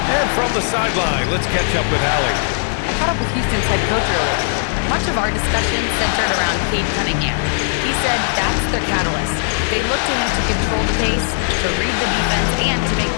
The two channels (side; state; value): right; silent; 63 dB below the other